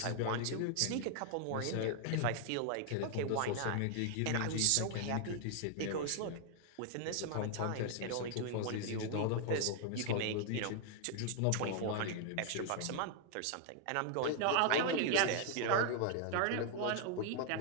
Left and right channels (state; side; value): different; both; correlation 0.00